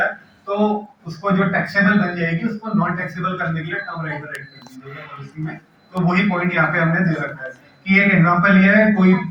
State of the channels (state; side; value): identical; both; correlation 1.00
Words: तो उसको जो टैक्सेबल बन जाएगी, उसको नॉन टैक्सेबल करने के लिए टर्म राइटर ऐड कर दीजिएगा पॉलिसी में। तो वही पॉइंट यहाँ पे हमने दे रखा है कि एक एग्जांपल ये है, कोई